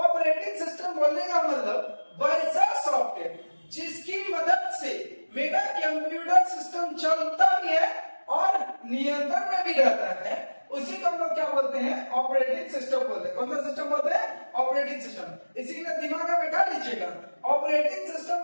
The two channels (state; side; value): inverted; both; correlation -1.00